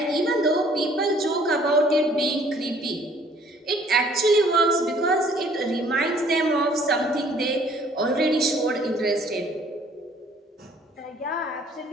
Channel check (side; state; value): both; normal; correlation 0.58